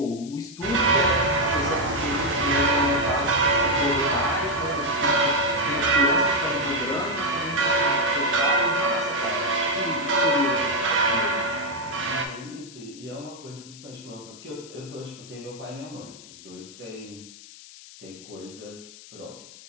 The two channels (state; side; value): noise; left; hiss, 18 dB below the sound